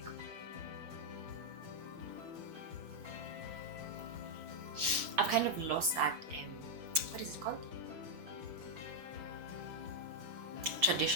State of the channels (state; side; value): late; left; 6.3 ms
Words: I've kind of lost that, what is it called?